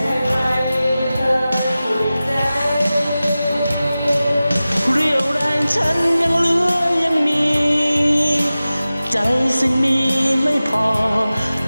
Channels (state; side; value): inverted; both; correlation -0.96